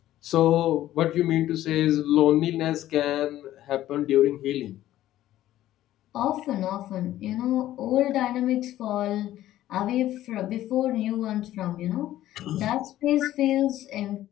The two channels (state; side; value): quieter; right; 13.8 dB